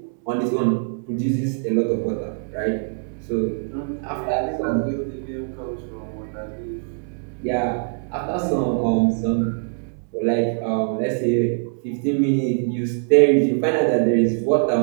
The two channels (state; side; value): silent; left; digital silence